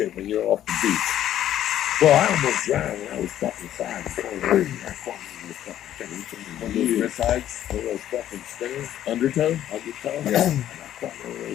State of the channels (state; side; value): quieter; right; 11.7 dB